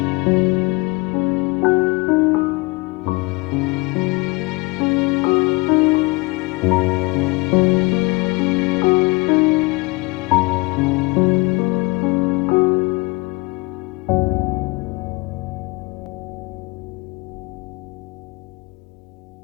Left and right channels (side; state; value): right; quieter; 25.7 dB